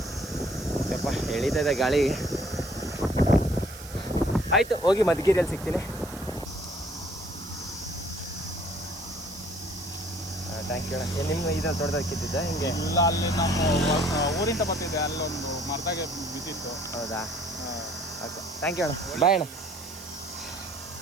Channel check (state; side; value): noise; right; hiss, 16 dB below the sound